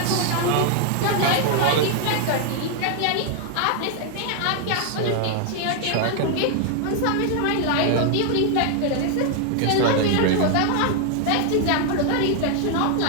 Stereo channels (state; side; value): different; both; correlation 0.00